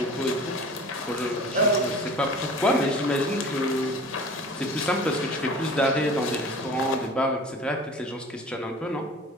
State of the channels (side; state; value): both; normal; correlation 0.41